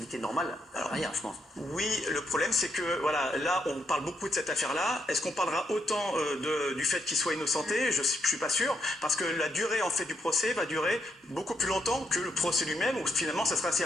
normale. Alors, rien, je pense. Oui, le problème, c'est que, voilà, là, on parle beaucoup de cette affaire-là. Est-ce qu'on parlera autant du fait qu'il soit innocenté? Je ne suis pas sûr. Parce que la durée, en fait, du procès va durer beaucoup plus longtemps que le procès lui-même, où finalement, ça sera assez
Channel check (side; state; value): both; normal; correlation 0.77